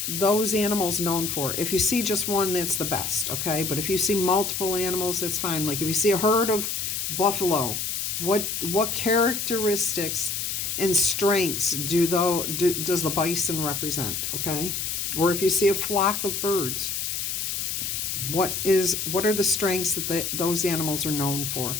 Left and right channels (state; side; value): noise; left; hiss, 2 dB below the sound